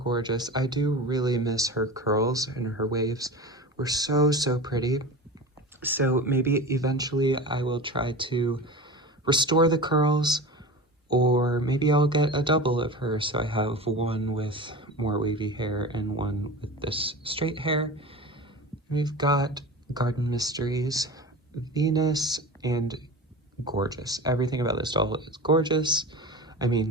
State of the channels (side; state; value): both; normal; correlation 0.31